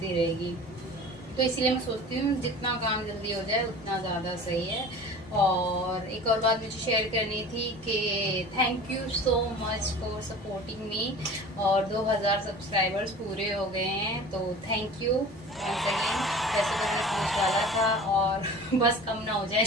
रहेगी। तो इसलिए मैं सोचती हूँ जितना काम जल्दी हो जाए उतना ज़्यादा सही है। और एक और बात मुझे शेयर करनी थी कि thank you so much for supporting me, और 2000 सब्सक्राइबर्स पूरे हो गए हैं, तो थैंक यू वंस अगेन। वैसे तो मैं सोच वाला था और बस कम ना हो जाए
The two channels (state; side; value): normal; both; correlation 0.40